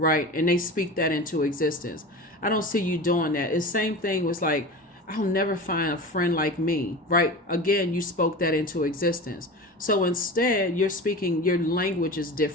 And they speak that into existence. I don't see you doing that. It's the same thing was like, I'll never find a friend like me, right? Again, you spoke that into existence. So instead, you're speaking, your language is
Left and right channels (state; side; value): normal; both; correlation 0.31